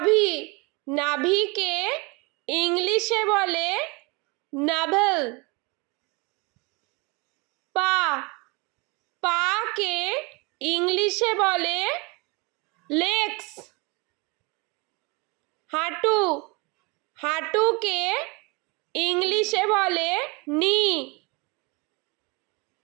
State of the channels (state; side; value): quieter; left; 27.9 dB